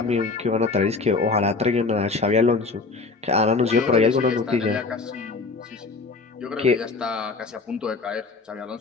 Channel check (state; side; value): quieter; right; 4.0 dB